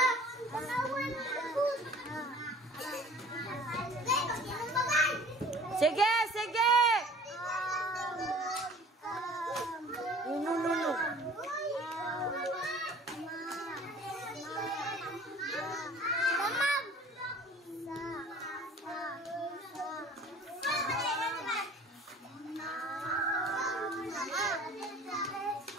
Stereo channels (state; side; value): normal; both; correlation 0.48